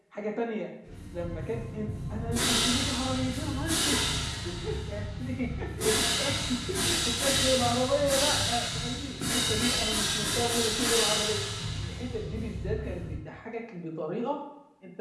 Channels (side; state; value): both; identical; correlation 1.00